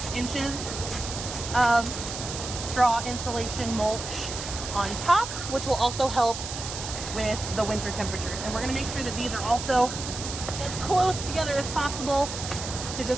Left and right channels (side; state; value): right; noise; hiss, 7 dB below the sound